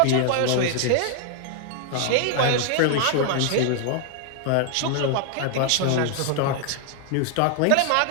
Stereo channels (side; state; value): both; different; correlation 0.00